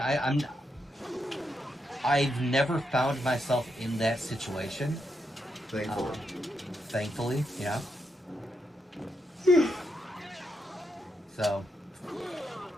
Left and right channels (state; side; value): normal; both; correlation 0.82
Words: I've never found myself in that situation. Thankfully. Yeah. So,